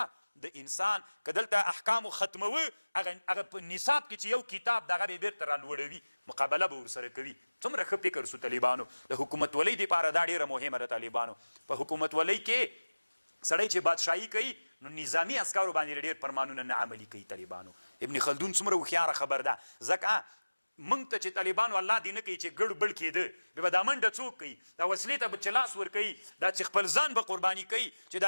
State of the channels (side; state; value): both; inverted; correlation -1.00